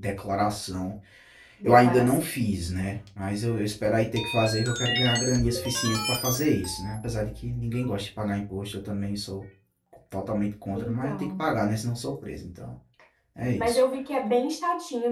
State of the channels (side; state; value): both; identical; correlation 1.00